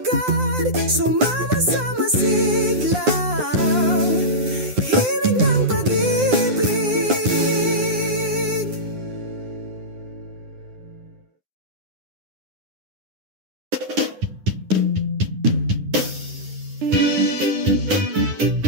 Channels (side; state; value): left; late; 9.8 ms